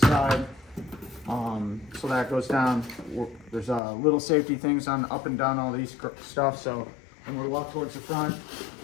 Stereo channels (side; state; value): right; drops out; at 3.8 s